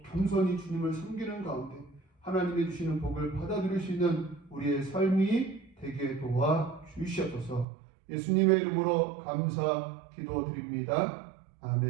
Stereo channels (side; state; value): left; drops out; at 7.7 s